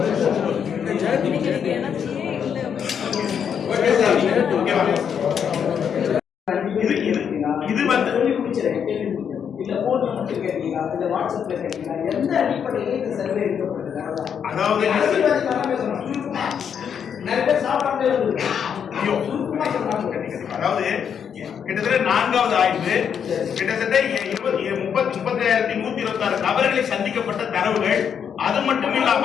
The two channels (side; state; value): right; quieter; 7.7 dB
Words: வந்து இல்ல போன் மட்டும் கேட்டீங்களா இல்ல வாட்ஸ்அப்ல கேட்டீங்களா எந்த அடிப்படையில் இந்த சர்வே எடுக்கப்படுது? அதாவது நிறைய பேர் சாப்பிடாமலே அதாவது கிட்டத்தட்ட 4வது ஆய்வு கிட்டத்தட்ட 35,126 நபர்களை சந்திக்கப்பட்ட தரவுகள். அது மட்டும் இல்லாம